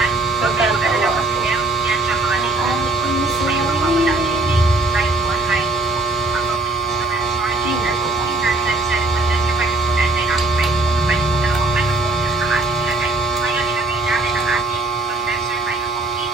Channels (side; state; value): left; quieter; 3.1 dB